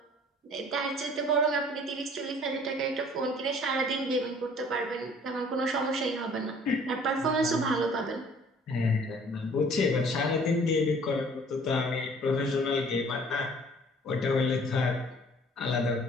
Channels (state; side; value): normal; both; correlation 0.53